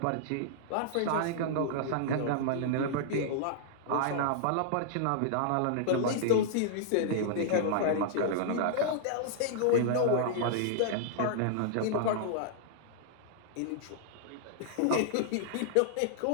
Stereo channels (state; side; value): different; both; correlation -0.01